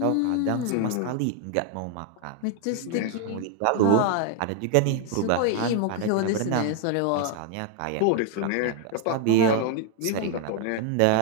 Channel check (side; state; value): both; different; correlation 0.01